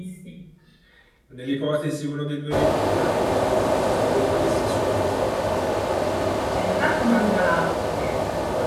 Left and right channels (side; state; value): both; identical; correlation 1.00